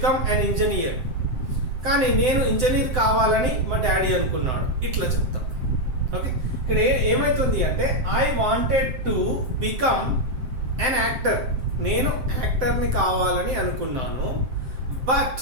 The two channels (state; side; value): late; left; 7.6 ms